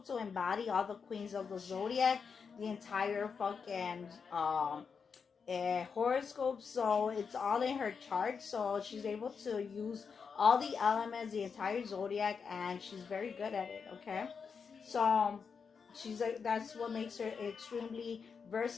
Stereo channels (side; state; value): right; quieter; 5.9 dB